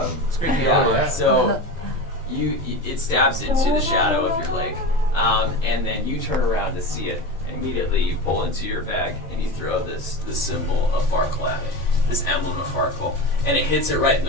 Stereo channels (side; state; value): both; normal; correlation 0.26